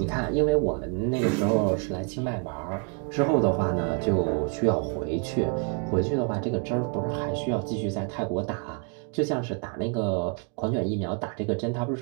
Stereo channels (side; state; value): left; quieter; 36.4 dB